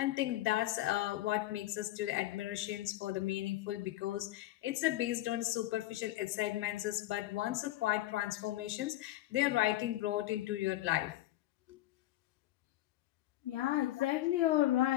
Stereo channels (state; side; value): quieter; right; 15.7 dB